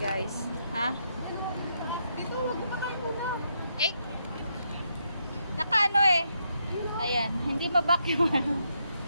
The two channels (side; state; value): both; inverted; correlation -0.79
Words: Ha? Dito, wag mo pa tayo muna. Eh! Nakaano eh. Ayan. Hindi mabak yung ano.